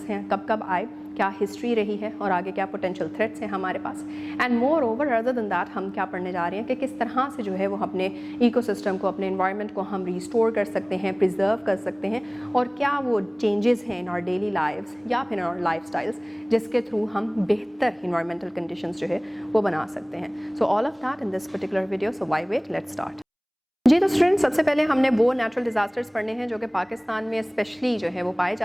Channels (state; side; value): identical; both; correlation 1.00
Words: हैं, कब कब आए, क्या हिस्ट्री रही है और आगे क्या पोटेंशियल थ्रेट्स हैं हमारे पास. And moreover other than that हम क्या पढ़ने जा रहे हैं कि किस तरह से जो है वो अपने इकोसिस्टम को, अपने एनवायरनमेंट को हम रिस्टोर कर सकते हैं, प्रिजर्व कर सकते हैं, और क्या वो चेंजेस हैं इन आवर डेली लाइव्स या फिर इन आवर लाइफस्टाइल्स जिसके थ्रू हम बेहतर इन्वायरमेंटल कंडीशंस जो है वो बना सकते हैं. So all of that in this particular video. So why wait, let's start. जी तो स्टूडेंट्स, सबसे पहले हमने वो नेचुरल डिज़ास्टर्स पढ़ने हैं जो कि पाकिस्तान में स्पेशली जो है वो पाए